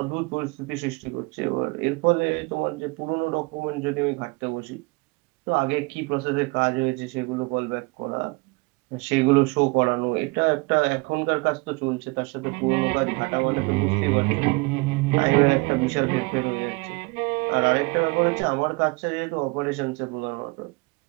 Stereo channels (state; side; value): quieter; left; 26.8 dB